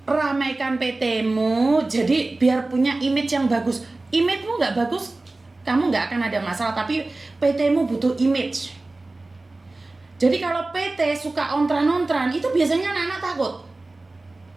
ramaikan PT-mu, jadi biar punya image yang bagus. Image-mu nggak bagus, kamu nggak akan ada masalah, tapi PT-mu butuh image. Jadi kalau PT suka ontran-ontran, itu biasanya anak-anak takut.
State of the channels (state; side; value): quieter; left; 3.1 dB